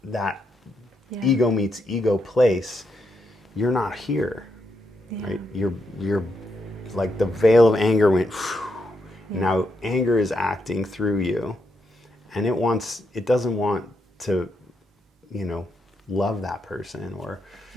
ego meets ego place, you're not here, right? You're like the veil of anger went. Now anger is acting through you, and it doesn't want to, love that person or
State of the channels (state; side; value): normal; both; correlation 0.81